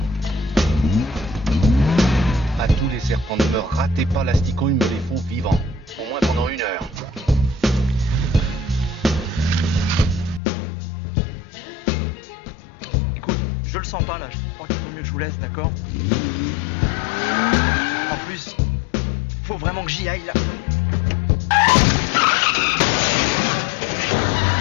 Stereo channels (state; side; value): drops out; right; at 10.4 s